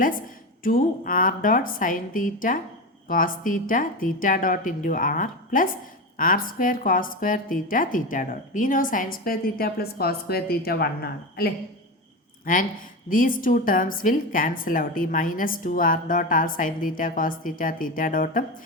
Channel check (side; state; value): both; normal; correlation 0.21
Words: 2r dot sine theta cos theta theta dot into R plus R square cos square theta theta dot. We know sine square theta plus cos square തീറ്റ 1 ആണ് അല്ലേ. And these two terms will cancel out. ഈ minus 2r dot R sine theta cos theta theta ഡോട്ടും